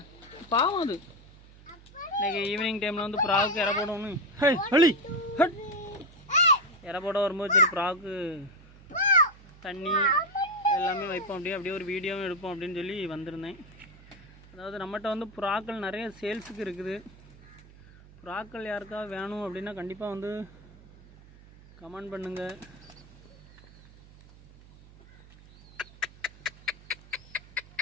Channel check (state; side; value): noise; right; hum, 22 dB below the sound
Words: பாவம் அது. இன்றைக்கி ஈவினிங் டைமில் வந்து ப்ராவுக்கு இற போடணும். இற போட வரும்போது சரி ப்ராவுக்கு தண்ணி எல்லாமே வைப்போம், அப்படியே ஒரு வீடியோவும் எடுப்போம் அப்படின்னு சொல்லி வந்திருந்தேன். அதாவது நம்மகிட்ட வந்து புறாக்கள் நிறைய சேல்ஸுக்கு இருக்குது. புறாக்கள் யாருக்காவது வேணும் அப்படின்னா கண்டிப்பாக வந்து கமெண்ட் பண்ணுங்க.